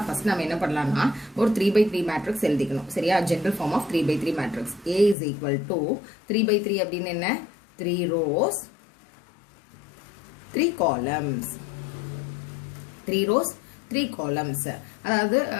ஃபர்ஸ்ட் நாம என்ன பண்ணலாம்னா ஒரு 3 by 3 matrix எழுதிக்கணும் சரியா general form of 3 by 3 matrix a is equal to 3 by 3 அப்படினா என்ன 3 rows 3 columns 3 rows 3 columns அதாவது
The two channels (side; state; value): right; drops out; at 5.2 s